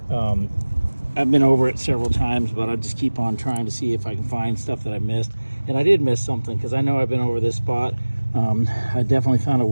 I've been over it several times, but I just keep on trying to see if I can find stuff that I missed. And I did miss something, because I know I've been over this spot. I definitely found a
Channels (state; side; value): inverted; both; correlation -1.00